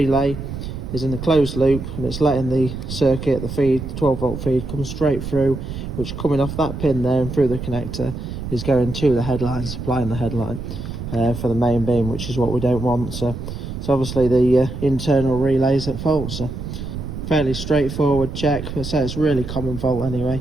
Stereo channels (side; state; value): right; noise; rumble, 7 dB below the sound